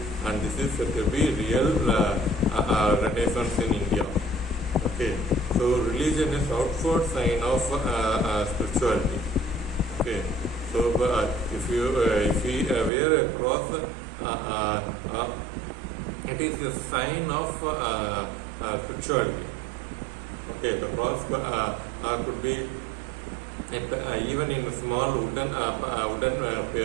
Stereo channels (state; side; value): drops out; left; at 12.9 s